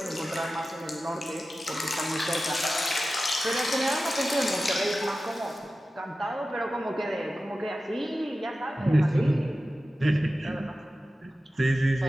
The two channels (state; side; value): normal; both; correlation 0.94